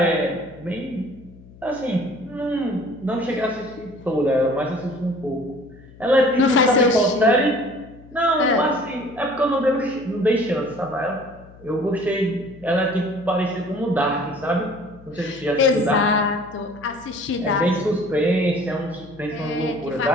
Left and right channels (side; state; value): left; noise; hum, 22 dB below the sound